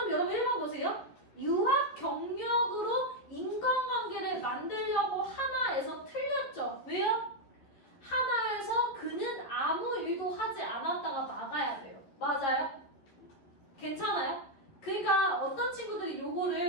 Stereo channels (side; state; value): right; late; 11 ms